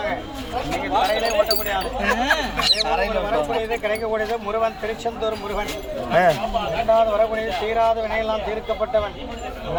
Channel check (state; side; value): identical; both; correlation 1.00